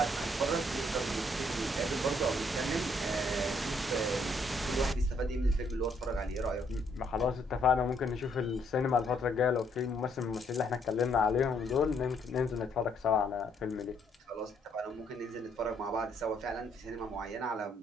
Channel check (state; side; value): normal; both; correlation 0.69